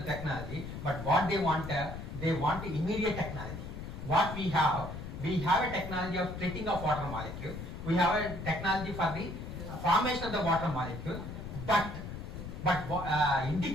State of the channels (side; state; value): left; noise; rumble, 8 dB below the sound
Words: technology, but what they want immediate technology. What we have a technology of splitting of water molecule. We have a technology for the formation of the water molecule, but